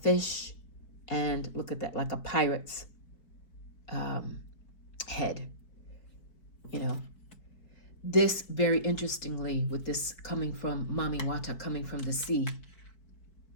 and look at that, like a pirate's head. This, very interestingly, with this coming from Mami Wata, coming from the sea,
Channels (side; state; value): right; late; 4.6 ms